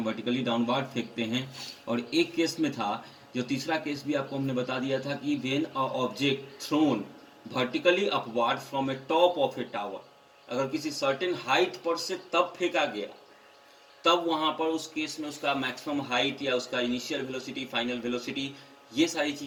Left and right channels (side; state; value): both; identical; correlation 1.00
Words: वर्टिकली डाउनवार्ड फेंकते हैं। और एक केस में था, जो तीसरा केस भी आपको हमने बता दिया था, कि when a object thrown vertically upward from A top of A tower, अगर किसी सर्टेन हाइट पर से तब फेंका गया, तब वहां पर उस केस में उसका मैक्सिमम हाइट या उसका इनिशियल वेलोसिटी, फाइनल वेलोसिटी, ये सारी